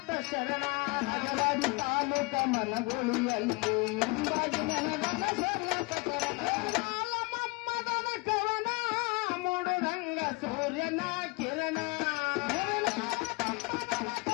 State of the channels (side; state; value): right; quieter; 26.8 dB